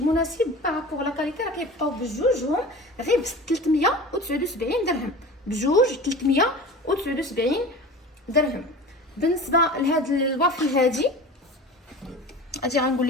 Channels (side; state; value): both; normal; correlation 0.36